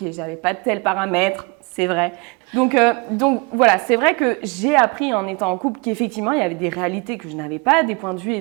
j'avais pas de tel paramètre, c'est vrai. Donc voilà, c'est vrai que j'ai appris en étant en couple qu'effectivement, il y avait des réalités que je n'avais pas, des points de vue,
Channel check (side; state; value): left; quieter; 29.6 dB